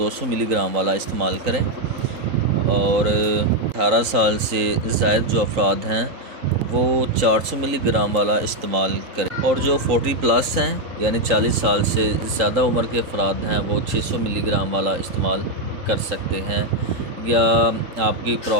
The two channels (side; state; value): left; late; 3.8 ms